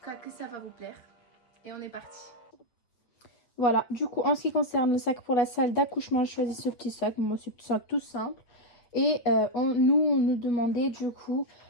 cas que ça va vous plaire et on est parti. Voilà, du coup, en ce qui concerne le sac pour la salle d'accouchement, je choisis ce petit sac. Moi, c'est un sac tout simple. Et on nous demandait du coup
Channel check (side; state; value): right; late; 8.4 ms